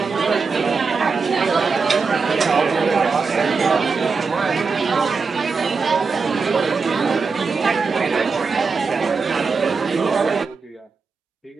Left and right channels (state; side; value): quieter; left; 4.8 dB